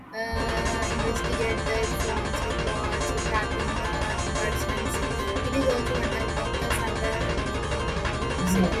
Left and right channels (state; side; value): identical; both; correlation 1.00